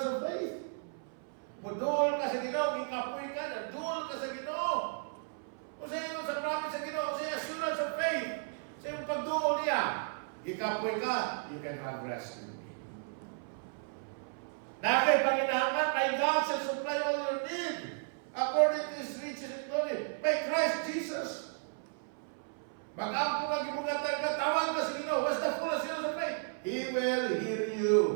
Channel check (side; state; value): left; silent; 55 dB below the other